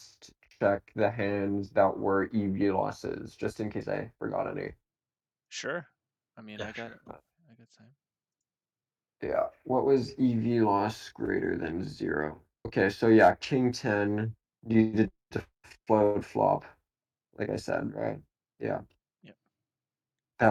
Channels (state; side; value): identical; both; correlation 1.00